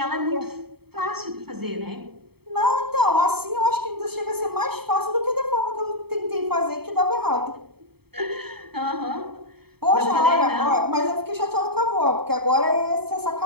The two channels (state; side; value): late; left; 0.96 ms